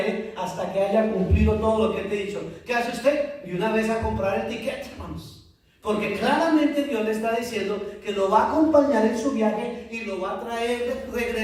hasta que haya cumplido todo lo que te he dicho. ¿Qué hace usted? Y una vez a comprar el ticket, hermanos. Porque claramente Dios le está diciendo que lo va a acompañar en su viaje y lo va a traer de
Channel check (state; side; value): identical; both; correlation 1.00